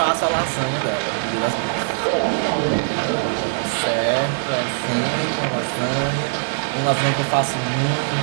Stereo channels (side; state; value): left; silent; 65 dB below the other